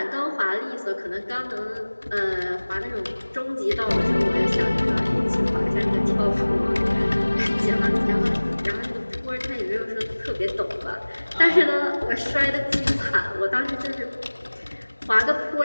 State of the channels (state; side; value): inverted; both; correlation -1.00